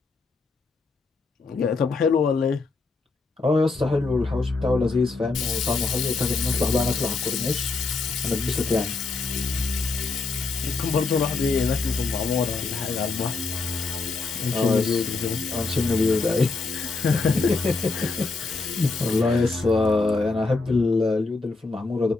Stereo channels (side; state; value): right; quieter; 3.9 dB